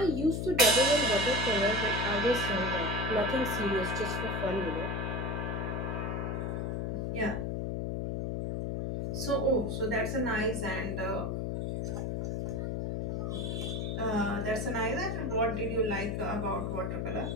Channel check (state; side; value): noise; left; hum, 1 dB below the sound